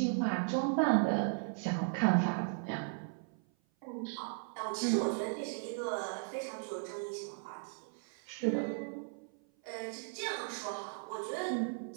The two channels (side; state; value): left; silent; 53 dB below the other